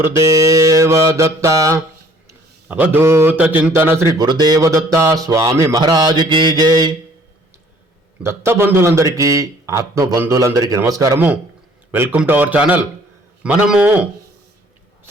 దత్త. అవధూత చింతన శ్రీ గురుదేవ దత్త స్వామి మహారాజుకి జై. దత్త బంధువులందరికీ, ఆత్మ బంధువులందరికీ నమస్కారము. Welcome to our channel. మనము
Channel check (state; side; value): normal; both; correlation 0.57